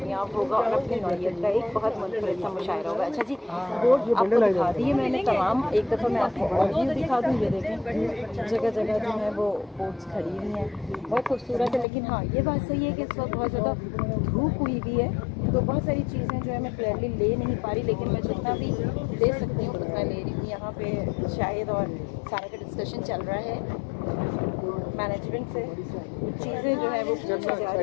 होगा और अपनी नौयत का एक बहुत मुनफरिद सा मुशायरा होगा। अच्छा जी, बोर्ड आपको दिखा दिए मैंने तमाम, एक दफ़ा मैं आपको और व्यू दिखा दूँ। ये देखें जगह जगह जो है वो बोट्स खड़ी हुई हैं, बहुत खूबसूरत है। लेकिन हाँ, ये बात सही है कि इस वक्त बहुत ज़्यादा धूप हुई भी है, तो बहुत सारी चीज़ें जो है मैं क्लियरली ले नहीं पा रही, लेकिन मैं जितना भी दे सकती हूँ उतना ले रही हूँ। यहाँ पे शायद और सारा का डिस्कशन चल रहा है मैनेजमेंट से, चीज़ें जो है वो पूछी जा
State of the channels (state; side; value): drops out; right; at 11.9 s